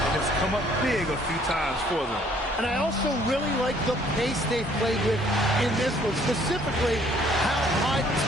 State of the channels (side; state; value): both; normal; correlation 0.61